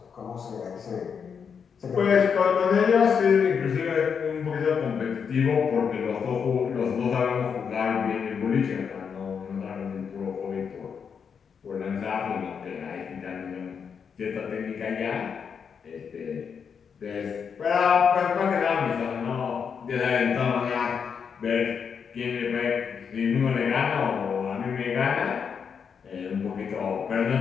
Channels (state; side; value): quieter; right; 6.6 dB